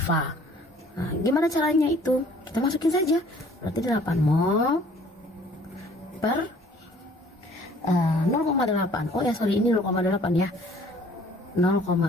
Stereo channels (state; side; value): normal; both; correlation 0.55